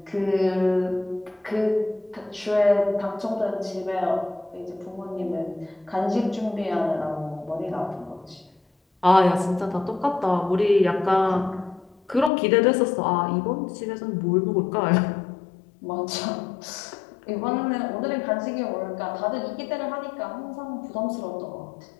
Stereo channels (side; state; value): right; drops out; at 12.3 s